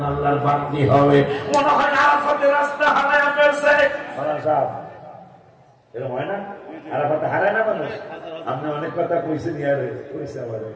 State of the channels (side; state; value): both; identical; correlation 1.00